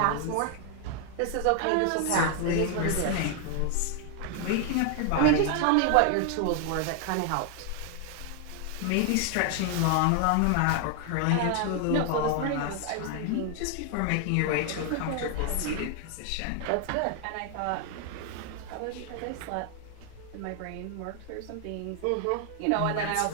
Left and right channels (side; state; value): both; different; correlation 0.00